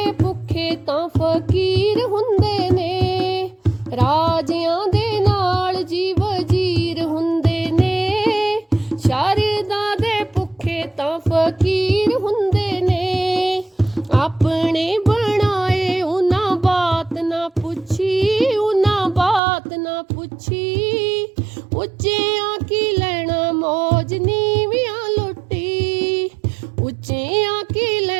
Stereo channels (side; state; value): left; drops out; at 19.4 s